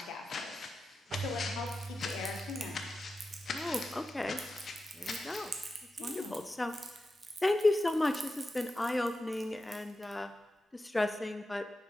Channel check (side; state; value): both; normal; correlation 0.92